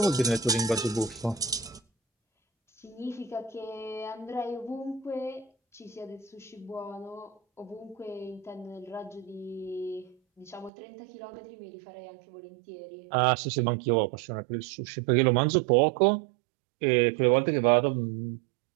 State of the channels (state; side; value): drops out; left; at 10.7 s